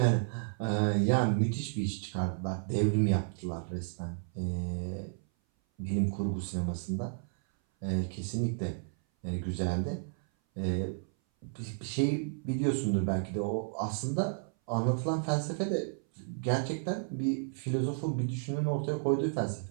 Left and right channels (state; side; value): silent; left; 56 dB below the other